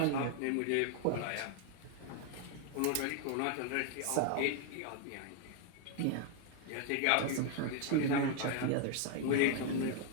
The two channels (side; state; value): both; different; correlation 0.00